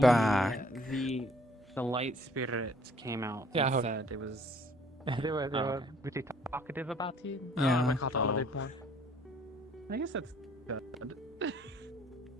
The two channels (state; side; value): normal; both; correlation 0.58